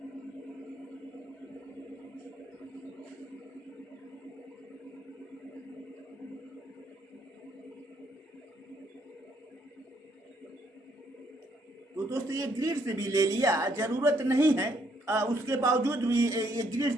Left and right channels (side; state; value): both; normal; correlation 0.70